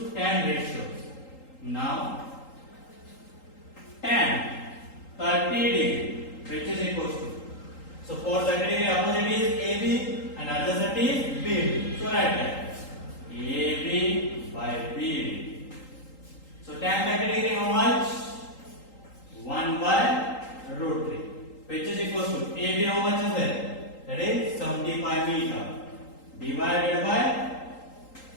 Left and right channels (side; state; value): right; late; 3.8 ms